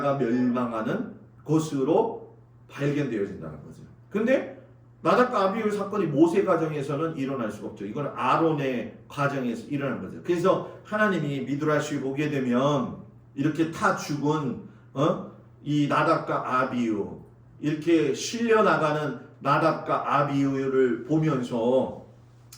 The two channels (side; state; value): both; identical; correlation 1.00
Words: 멸망하는 것으로 발견되어진다는 거죠. 근데 나답과 아비후 사건이 모세 가정에서는 일어날 수가 없죠. 이건 아론의 가정에서 일어난 거죠. 그래서 하나님이 미드라시 보게 되면 이렇게 타 죽은 이 나답과 아비후, 이렇게 실려 나가는 나답과 아비후를 보면서